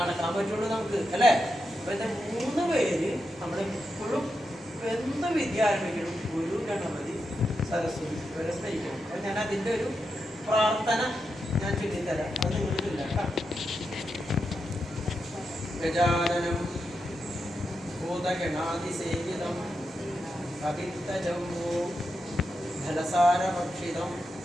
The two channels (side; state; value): both; normal; correlation 0.87